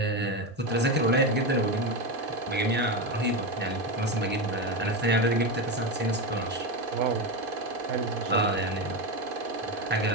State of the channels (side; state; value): both; normal; correlation 0.15